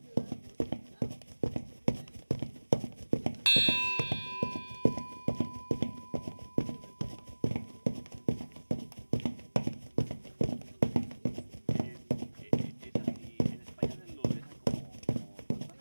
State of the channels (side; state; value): both; inverted; correlation -1.00